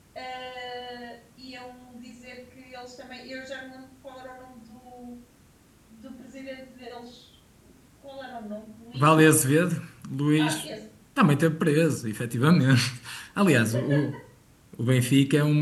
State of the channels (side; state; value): both; identical; correlation 1.00